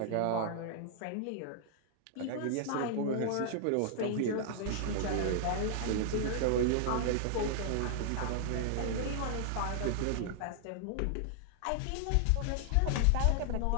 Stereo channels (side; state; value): both; different; correlation 0.00